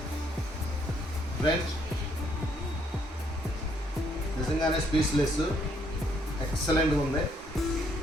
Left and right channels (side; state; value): both; normal; correlation 0.69